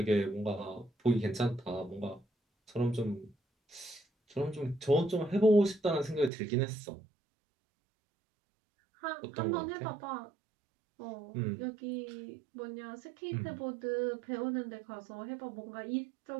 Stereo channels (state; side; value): drops out; left; at 6.3 s